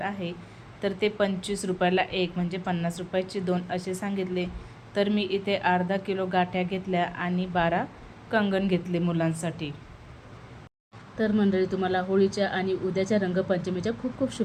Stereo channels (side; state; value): both; identical; correlation 1.00